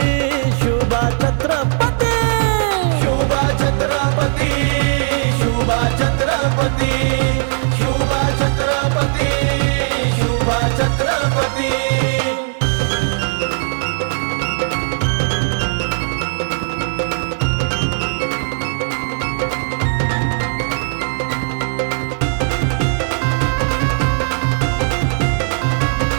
शुभा छत्रपती, शुभा छत्रपती, शुभा छत्रपती, शुभा छत्रपती, शुभा छत्रपती।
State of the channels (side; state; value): left; silent; 64 dB below the other